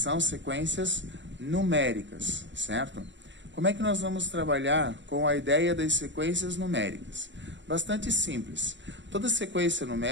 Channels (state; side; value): late; left; 0.53 ms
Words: sequências numéricas, certo? Como é que nós vamos trabalhar com a ideia das sequências numéricas? Bastante simples. Toda sequência